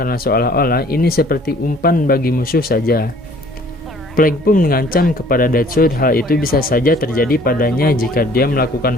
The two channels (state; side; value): normal; both; correlation 0.55